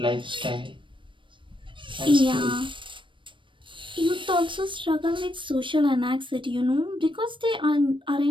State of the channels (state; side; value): late; left; 0.24 ms